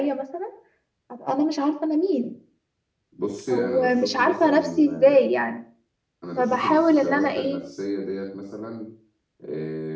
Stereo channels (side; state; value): both; identical; correlation 1.00